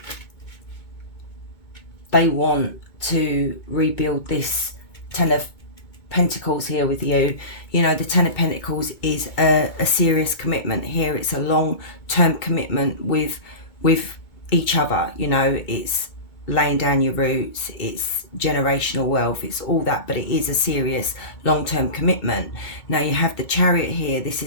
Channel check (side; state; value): right; late; 2.2 ms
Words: they want to rebuild this 10 of Pentacles here with you. You know, the 10 of Pentacles is a serious commitment here. It's a long-term commitment with each other. You know, it's laying down your roots, it's generational wealth, it's all that, but it is a serious long-term commitment. Now you have the Chariot here. This